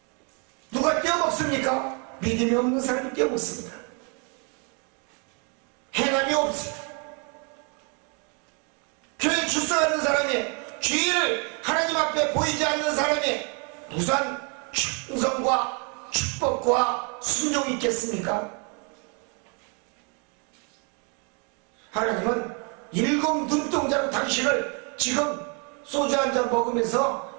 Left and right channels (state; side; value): quieter; left; 35.8 dB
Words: 누가 떼어먹습니까? 믿음이 없는 사람이 떼어먹습니다. 행함이 없습니다. 교회 출석하는 사람이 주의를 하나님 앞에 보이지 않는 사람이 무슨 충성과 축복과 순종이 있겠습니까? 하나님은 일곱 눈동자로 당신을 지금 소주 한 잔